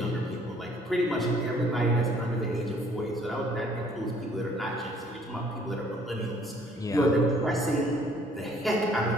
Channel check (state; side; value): normal; both; correlation 0.60